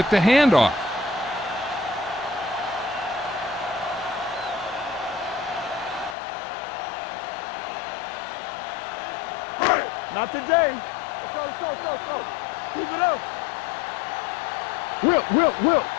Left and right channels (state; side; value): drops out; right; at 6.2 s